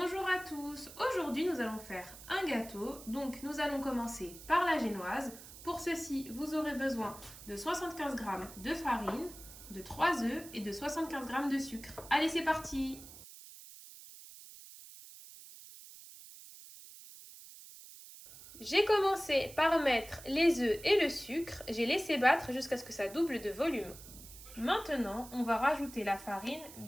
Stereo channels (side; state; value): right; noise; hiss, 16 dB below the sound